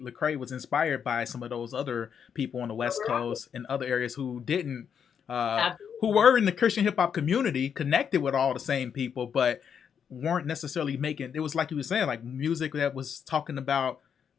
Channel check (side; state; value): right; quieter; 7.6 dB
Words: was inspired by some of those other people on the West Right. Coast and other areas who didn't, who Absolutely. were in the Christian hip hop community, connected with all the same people, but weren't necessarily making. It was like you were saying, like music that was talking about